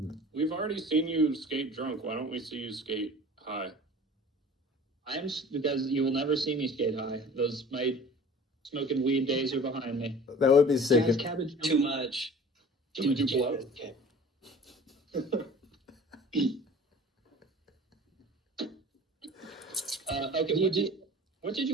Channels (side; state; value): both; normal; correlation 0.44